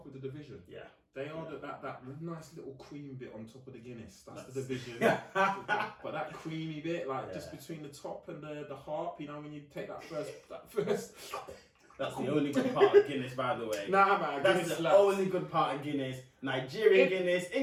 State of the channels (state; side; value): identical; both; correlation 1.00